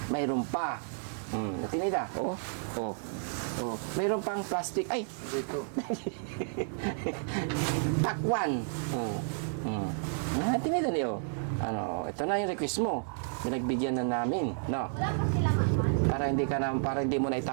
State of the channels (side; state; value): left; silent; 57 dB below the other